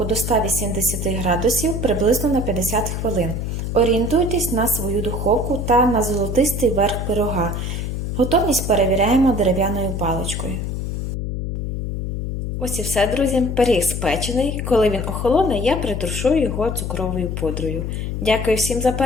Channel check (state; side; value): noise; left; hum, 3 dB below the sound